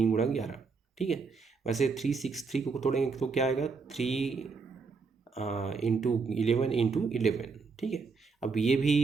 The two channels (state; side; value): quieter; left; 4.8 dB